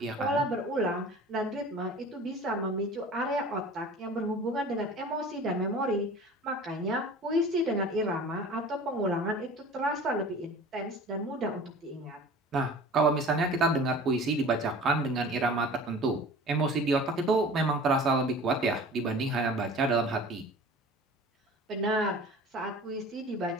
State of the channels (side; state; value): both; normal; correlation 0.42